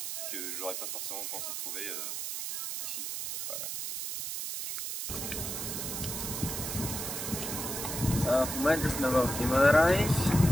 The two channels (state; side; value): noise; right; hiss, 4 dB below the sound